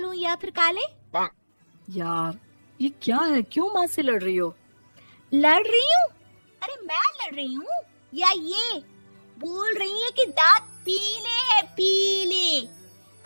या फिर काले? यार ये क्या है, क्यों माँ से लड़ रही हो? लड़ रही हूँ? अरे मैं लड़ रही हूँ या ये बोल रही है कि दांत पीले हैं, पीले।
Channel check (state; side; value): inverted; both; correlation -1.00